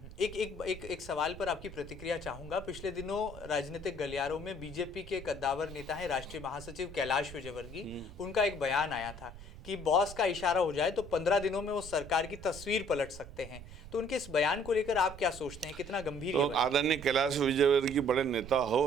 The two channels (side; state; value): right; noise; rumble, 14 dB below the sound